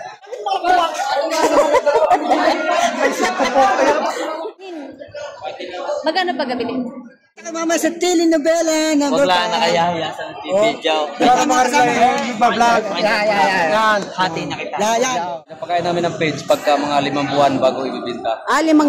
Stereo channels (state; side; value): identical; both; correlation 1.00